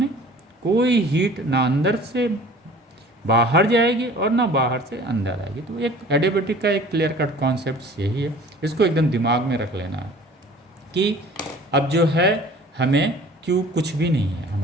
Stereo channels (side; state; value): both; normal; correlation 0.47